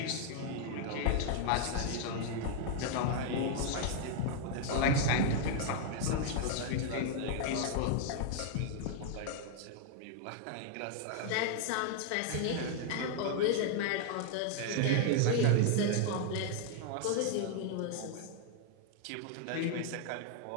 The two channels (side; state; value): both; different; correlation 0.00